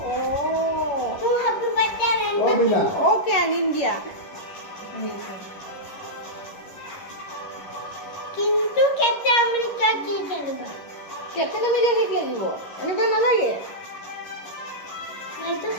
তোৰ হাবি বাচ্চা আনিব অ'কে আনিম দিয়া কিন্তু কেপটেন আমেৰিকা কি খেলিব কেপ্টেন আমেৰিকা কেক লাগিব এনেকুৱা নালাগে মইতো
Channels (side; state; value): right; late; 11 ms